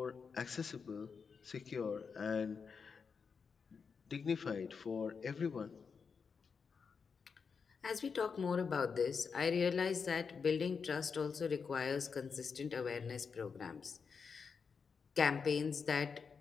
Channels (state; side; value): quieter; right; 5.7 dB